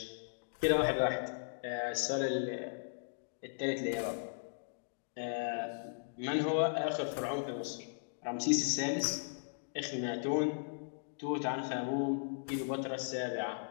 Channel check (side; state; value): right; silent; digital silence